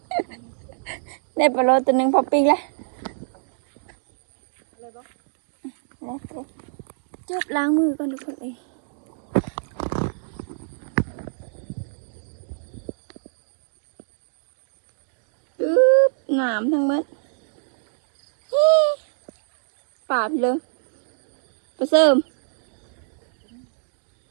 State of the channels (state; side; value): silent; left; digital silence